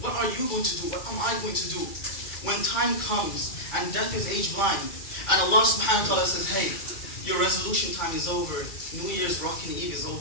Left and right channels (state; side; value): late; right; 2.3 ms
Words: What are you going to do? What am I going to do when time comes and death is age blind and Allah subhanahu wa ta'ala says, hey, your resolution time is over. New Year's Rockin' Eve is